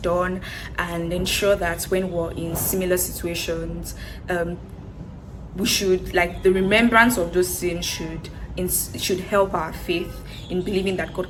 and ensure that when we're in similar situations, we should, like, the remembrance of those sins should help our faith in believing that God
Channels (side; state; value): both; identical; correlation 1.00